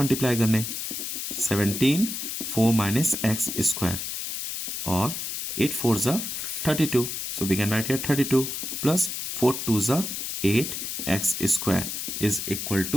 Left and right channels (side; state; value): left; noise; hiss, 4 dB below the sound